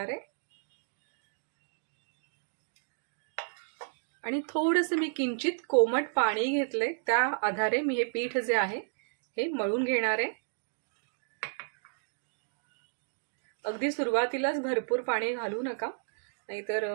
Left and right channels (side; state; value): left; silent; digital silence